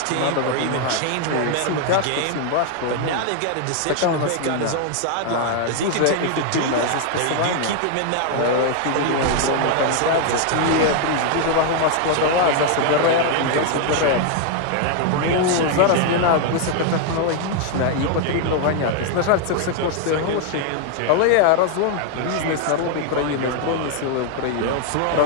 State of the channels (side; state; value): both; different; correlation 0.00